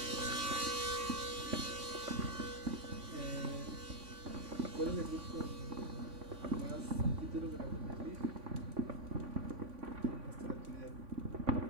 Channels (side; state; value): left; late; 3.5 ms